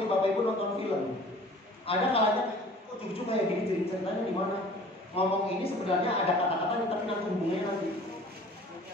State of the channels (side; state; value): both; normal; correlation 0.48